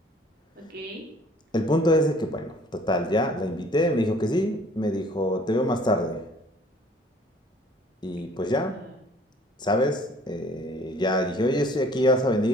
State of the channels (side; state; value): both; normal; correlation 0.54